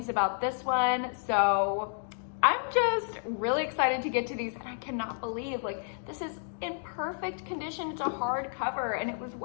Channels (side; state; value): right; silent; digital silence